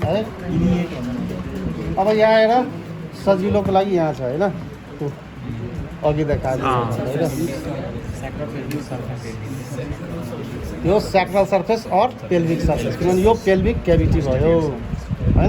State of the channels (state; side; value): identical; both; correlation 1.00